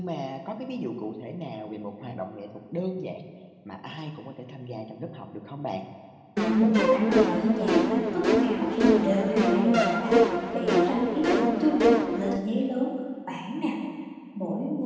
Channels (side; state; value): both; identical; correlation 1.00